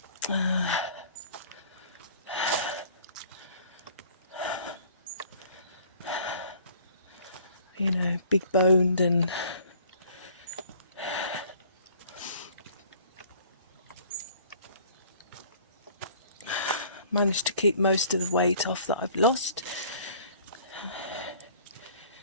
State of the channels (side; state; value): both; inverted; correlation -0.53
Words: You know, big boned, and managed to keep most of the weight off that I've lost.